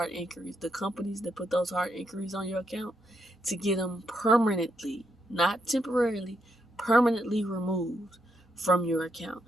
inquiries, the companies that put those hard inquiries on your account, to get them permanently, not temporarily, permanently removed from your account.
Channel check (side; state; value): both; normal; correlation 0.79